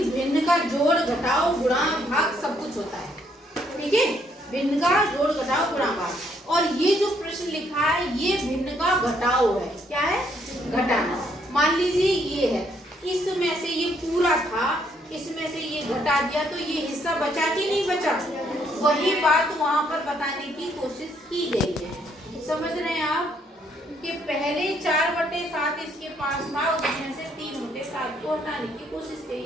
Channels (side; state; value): both; normal; correlation 0.70